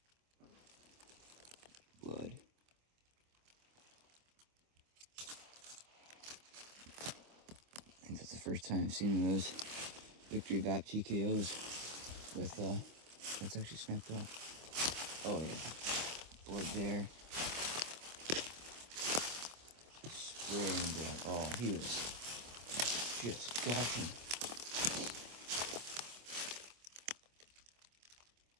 Blood. I think that's the first time I've seen one of those Victory VAP TKOs with, that's actually snapped off. Oh yeah. Blood there. Spraying blood. Oh, he was just gushing.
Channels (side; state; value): left; late; 25 ms